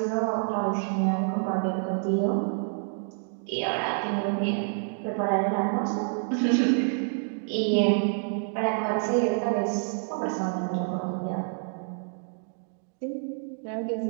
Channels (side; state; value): left; silent; 59 dB below the other